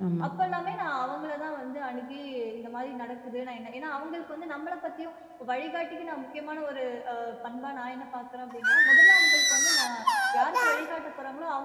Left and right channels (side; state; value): both; identical; correlation 1.00